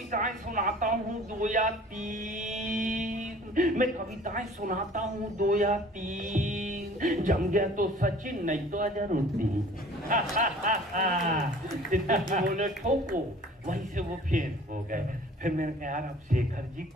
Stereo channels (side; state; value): both; normal; correlation 0.49